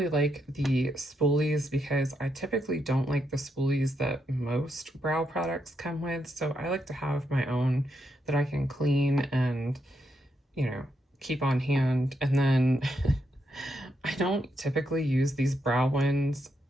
like the spoolies because I typically don't like the spoolies that most brow products come with, so I like to have my own that I can clean and, you know, keep on hand. And then I don't typically use these brow ones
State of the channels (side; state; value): both; normal; correlation 0.80